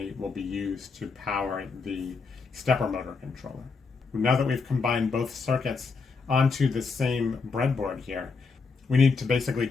will be used to power the stepper motor controller. Now that we've combined both circuits onto the same breadboard here, we need to basically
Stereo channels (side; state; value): right; quieter; 4.7 dB